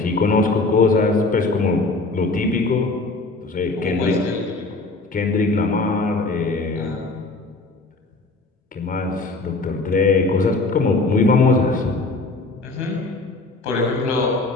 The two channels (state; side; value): quieter; right; 3.3 dB